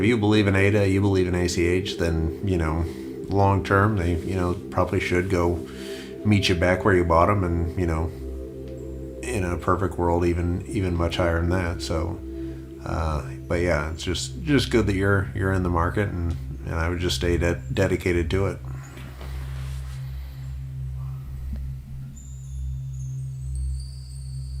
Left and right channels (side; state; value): both; identical; correlation 1.00